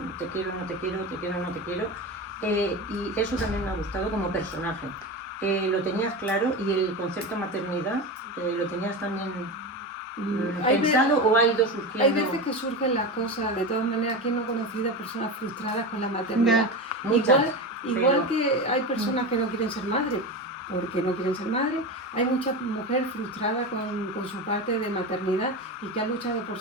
quiero, no te quiero, te quiero, no te quiero, y eso también me ha gustado como personaje. Lo tenías claro y el concepto maternidad lo tenías también Hay pensado o ha ido surgiendo. hay veces que surgen las cosas, de todas maneras, ¿quién no ha conocido a personas frustradas con la maternidad? Muchas, Igual pero- que hay personas que no quieren ser madres, porque no quieren ser madres. Hay mucha mujer frustrada con su parte de maternidad y que ha luchado por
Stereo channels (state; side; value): normal; both; correlation 0.23